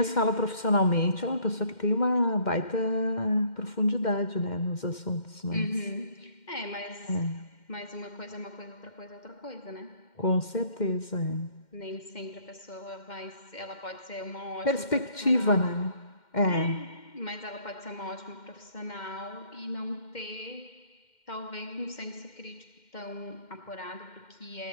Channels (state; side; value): late; right; 2.1 ms